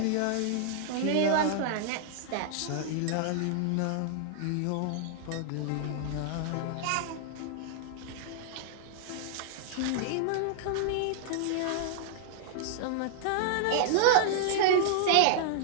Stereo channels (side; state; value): both; different; correlation -0.01